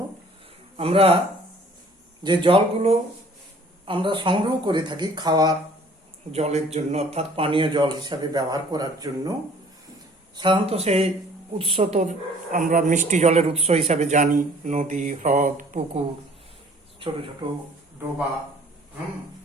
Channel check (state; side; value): normal; both; correlation 0.54